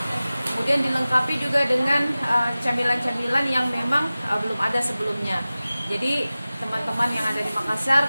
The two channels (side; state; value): both; inverted; correlation -0.97